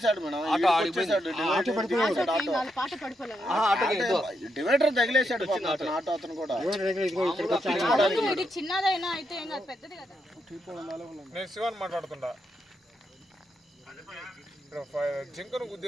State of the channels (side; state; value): both; normal; correlation 0.81